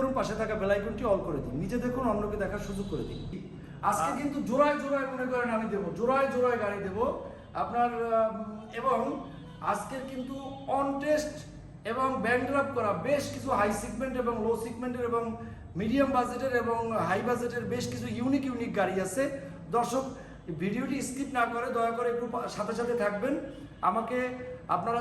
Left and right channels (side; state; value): both; identical; correlation 1.00